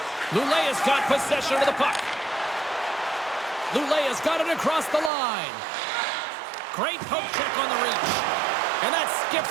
Luleå's got possession of the puck. Luleå's got it across the line. Great poke check on the reach. And that skips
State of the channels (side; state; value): left; drops out; at 5.1 s